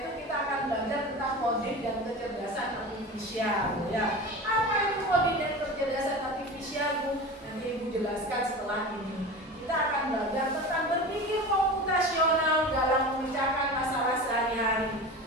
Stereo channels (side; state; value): both; normal; correlation 0.31